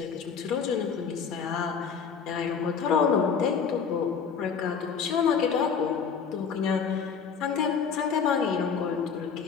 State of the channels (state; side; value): quieter; right; 6.3 dB